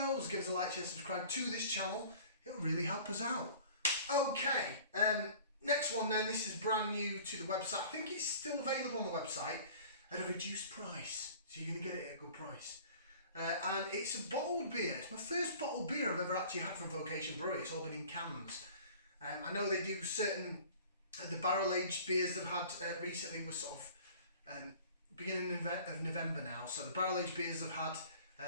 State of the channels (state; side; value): inverted; both; correlation -0.46